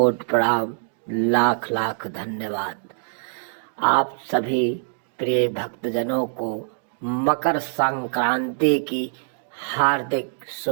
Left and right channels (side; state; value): left; silent; digital silence